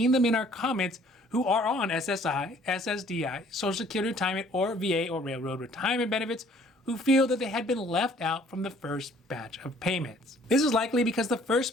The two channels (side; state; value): both; normal; correlation 0.58